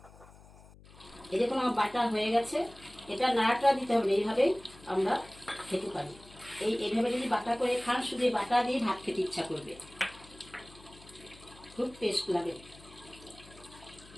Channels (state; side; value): noise; left; hum, 22 dB below the sound